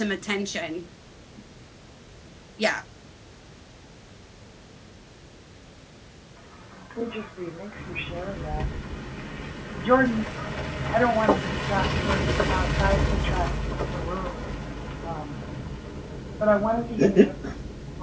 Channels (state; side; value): identical; both; correlation 1.00